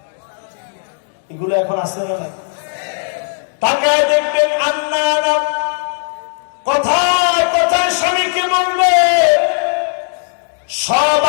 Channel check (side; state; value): right; silent; digital silence